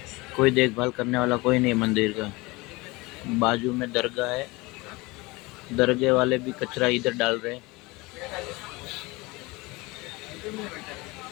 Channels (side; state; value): right; quieter; 23.4 dB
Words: कोई देखभाल करने वाला कोई नहीं मंदिर का। बाजू में दरगाह है, दरगाह वाले भी कचरा इधर डाल रहे हैं।